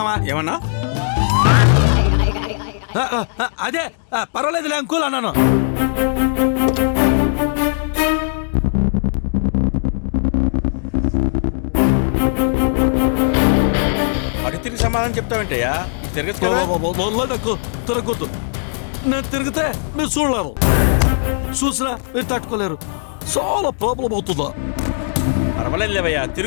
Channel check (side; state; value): right; silent; digital silence